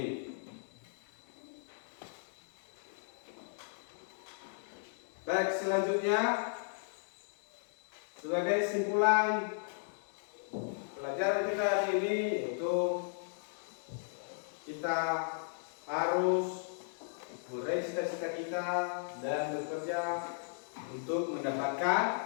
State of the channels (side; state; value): right; silent; digital silence